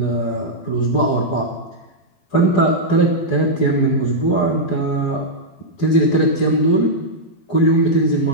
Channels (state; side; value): late; right; 12 ms